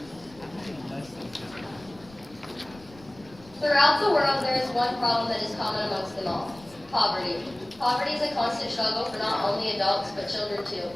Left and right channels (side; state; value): left; noise; rumble, 23 dB below the sound